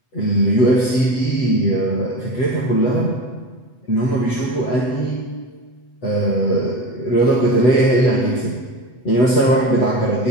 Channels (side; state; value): right; late; 7.9 ms